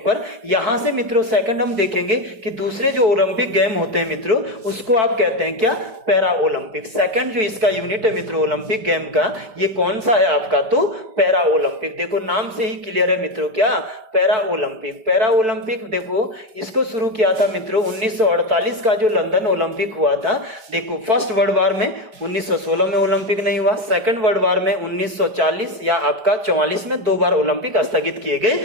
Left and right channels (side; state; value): left; late; 4.6 ms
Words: यहां से मित्रों सेकंड हम देखेंगे कि दूसरे जो ओलंपिक गेम होते हैं मित्रों उसको आप कहते हैं क्या, पैरा ओलंपिक। सेकंड जो इसका यूनिट है मित्रों ओलंपिक गेम का, ये कौन सा है आपका, तो पैरा ओलंपिक। देखो नाम से ही क्लियर है मित्रों, क्या, पैरा ओलंपिक। पैरा ओलंपिक देखो इसको शुरू किया था मित्रों 1948 का जो लंदन ओलंपिक हुआ था। देखो फर्स्ट वर्ल्ड वार में 1916 में ओलंपिक नहीं हुआ, सेकंड वर्ल्ड वार में 1940 या आपका 44 में 2 बार ओलंपिक स्थगित किए